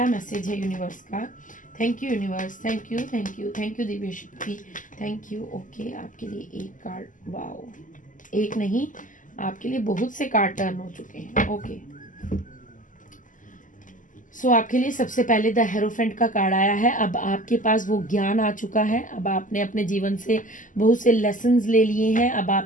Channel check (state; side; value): late; right; 0.38 ms